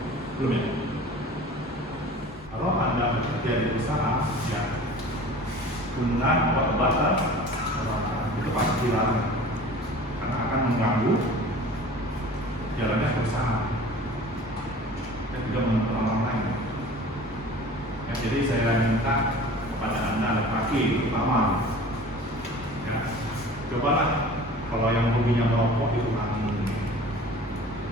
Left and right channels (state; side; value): normal; both; correlation 0.42